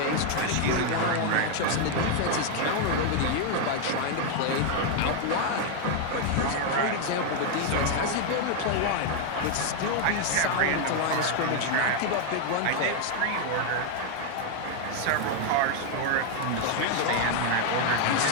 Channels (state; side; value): different; both; correlation 0.00